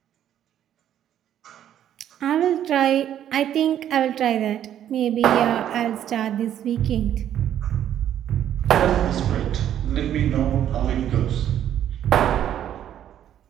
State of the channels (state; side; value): quieter; left; 10.7 dB